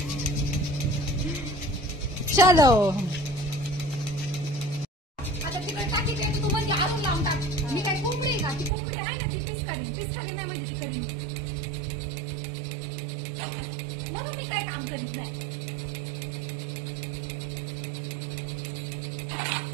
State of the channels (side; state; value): left; drops out; at 8.7 s